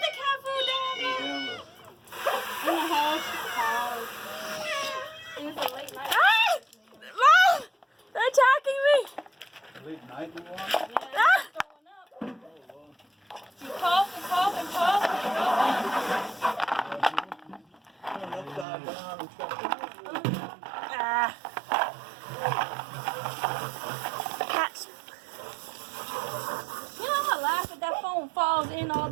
the cat food down there. In the house. It was a late night. Ah! Mom! They're attacking me! Late night you want? Yeah, it's throwing up. You cough and cough and cough. Turn upside down and stuff. Ah. Cats. You know, I laugh if that phone falls in all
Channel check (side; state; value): left; drops out; at 18.7 s